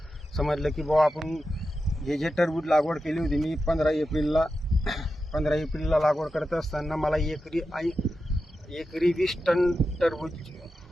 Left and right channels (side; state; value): both; normal; correlation 0.90